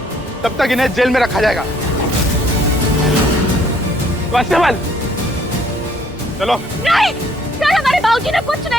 तब तक इन्हें जेल में रखा जाएगा। कांस्टेबल, चलो। नहीं सर, हमारे बाबूजी ने कुछ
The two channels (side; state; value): both; normal; correlation 0.63